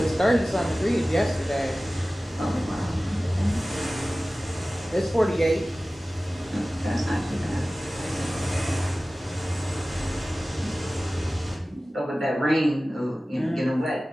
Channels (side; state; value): both; normal; correlation 0.97